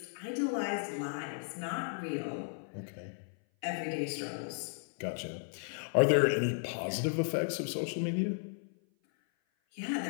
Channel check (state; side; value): silent; right; 55 dB below the other